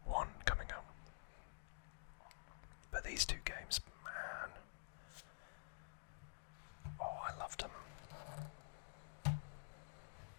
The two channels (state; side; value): silent; right; digital silence